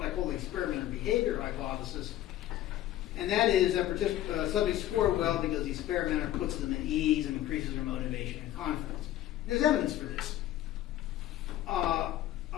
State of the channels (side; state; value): right; quieter; 13.4 dB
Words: I call the experimenter behavior hypothesis. And that is that subjects score well because the experimenter puts them at ease and increases their motivation and confidence. There's evidence for this.